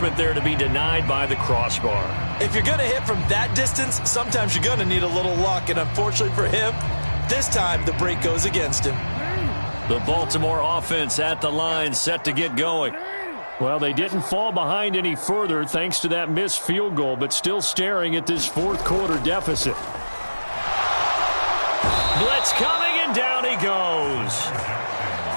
there to be denied by the crossbar. If you're going to hit from that distance, sometimes you're going to need a little luck, and unfortunately for him, this time the break goes against him. The Baltimore offense at the line, set to get going. Well, they didn't fall behind any further thanks to that missed field goal, but still staring at this 4th quarter deficit. Blitz coming, and down he goes.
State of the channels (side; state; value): both; inverted; correlation -1.00